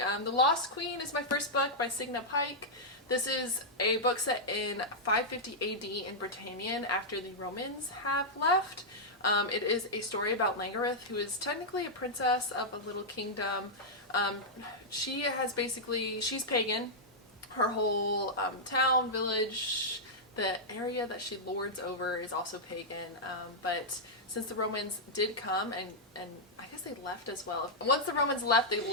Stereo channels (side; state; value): both; normal; correlation -0.07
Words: Lost Queen is my first book by Signa Pike. This is a book set in 550 AD in Britannia after the Romans have left. It is a story about Langareth, who is technically a princess of a little kingdom. She's pagan. Her whole town, village, the area that she lords over is also pagan, but since the Romans did come, and I guess they left as well. Once the Romans left, they